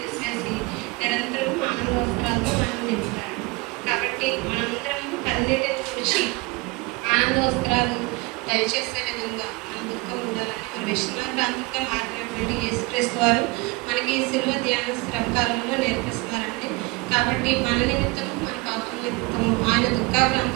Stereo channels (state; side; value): quieter; left; 24.6 dB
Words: నిరంతరం ఆనందోత్సరాలతో మనం నింపుతాడు. కాబట్టి మనందరము కన్నీటిని తుడిచి ఆనందోత్సరాలు దయచేసే విధంగా మన దుఃఖం ఉండాలని మన విశ్రాంతిగా మారినటువంటి యేసుక్రీస్తు వారు మనకి శిలువ ధ్యాన శ్రమకాలంలో నేర్పిస్తున్నారండి. కాబట్టి మన నిమిత్తము, మన పాపం నిమిత్తము ఆయన